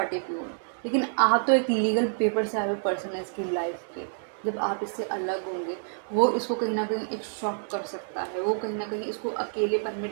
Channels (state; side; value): silent; left; digital silence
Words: की हो, लेकिन आप तो एक लीगल पेपर से आए हुए पर्सन है इसकी लाइफ के। जब आप इससे अलग होंगे, वो इसको कहीं ना कहीं एक शॉक कर सकता है, वो कहीं ना कहीं इसको अकेलेपन में